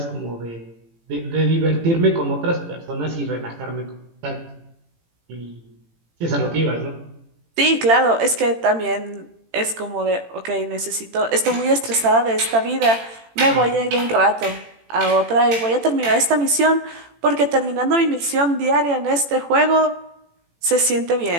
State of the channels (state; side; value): late; left; 18 ms